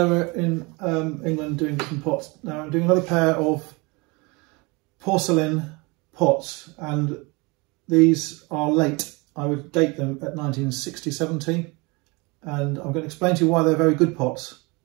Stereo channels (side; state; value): left; quieter; 27.0 dB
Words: we're in England doing different pots. Now I'm doing another pair of porcelain pots, and these are late. I would date them at 1960-70, and I'm going to explain to you why they're very good pots.